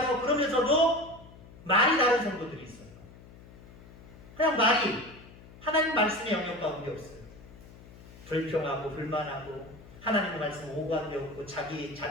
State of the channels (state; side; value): noise; left; hum, 20 dB below the sound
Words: 그러면서도 말이 다른 성도들이 있어요. 그냥 말이 하나님 말씀의 영역 가운데 없어요. 불평하고 불만하고 하나님의 말씀 오가는데 없고 자기